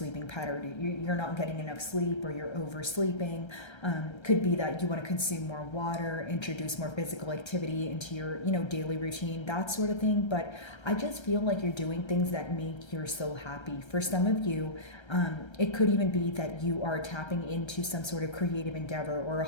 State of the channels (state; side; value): late; right; 1.3 ms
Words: pattern. You're not getting enough sleep or you're oversleeping. Could be that you want to consume more water, introduce more physical activity into your, daily routine, that sort of thing. But I just feel like you're doing things that make your soul happy. For some of you, it could even be that you are tapping into some sort of creative endeavor or a